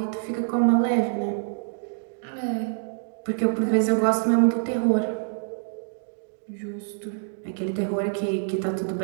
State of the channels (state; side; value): silent; left; digital silence